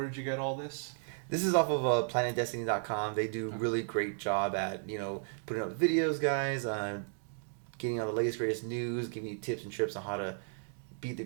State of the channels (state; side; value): silent; left; digital silence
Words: did you get all this? This is off of planetdestiny.com. They do a really great job at putting up videos, guys, getting on the latest greatest news, giving you tips and tricks on how to beat the